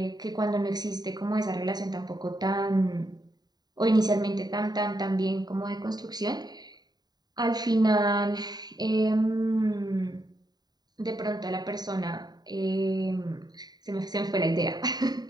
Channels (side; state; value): left; late; 0.20 ms